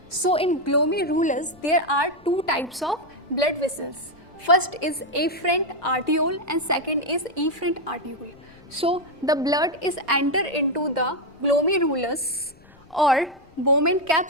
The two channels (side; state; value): left; noise; rumble, 27 dB below the sound